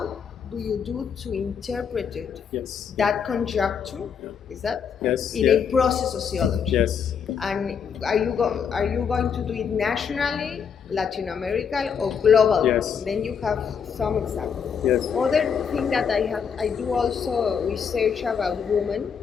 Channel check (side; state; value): right; quieter; 6.9 dB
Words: do you do to interpret it? Yes. That conjuncture, yeah. is that? Yes. In yeah. a process sociology. Yes. And are you going to do it nationally, Latin America, or global? Yes. Then you have some examples. Yes. Other thing that I do also research about women.